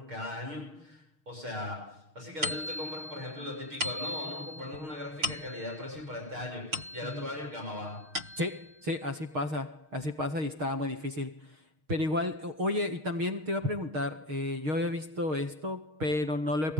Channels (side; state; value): left; late; 6.5 ms